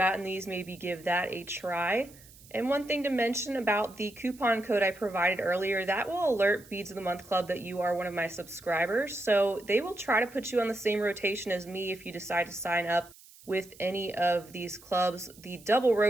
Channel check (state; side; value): noise; right; hiss, 23 dB below the sound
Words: these, maybe give that a try. And one thing to mention about the coupon code I provided earlier, that will alert Beads of the Month Club that you are one of my subscribers. So they will try to put you on the same rotation as me if you decide to sign up with any of these clubs. The double